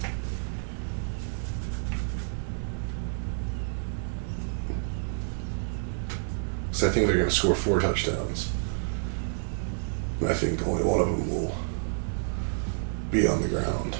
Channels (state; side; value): silent; left; digital silence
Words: So I think they're going to score 4 touchdowns. And I think only one of them will be on the ground.